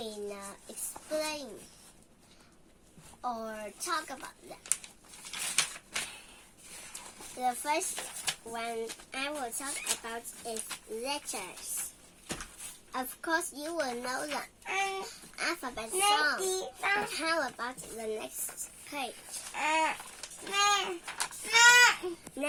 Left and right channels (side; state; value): both; identical; correlation 1.00